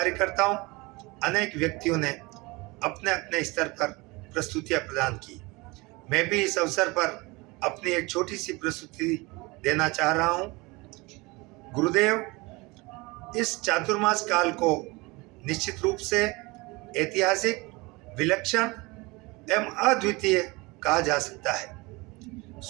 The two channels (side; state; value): left; quieter; 24.4 dB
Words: अनेक व्यक्तियों ने अपने अपने स्तर पर प्रस्तुतियां प्रदान की। मैं भी इस अवसर पर अपनी एक छोटी सी प्रस्तुति देना चाह रहा हूं। गुरुदेव इस चातुर्मास काल को निश्चित रूप से ऐतिहासिक, विलक्षण एवं अद्वितीय कहा जा सकता है।